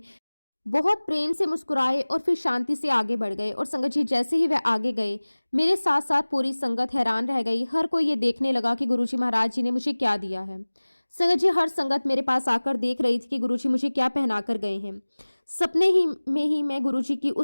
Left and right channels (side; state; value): both; inverted; correlation -1.00